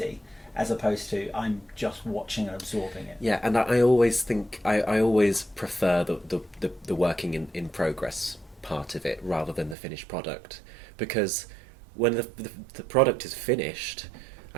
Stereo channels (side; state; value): left; drops out; at 9.8 s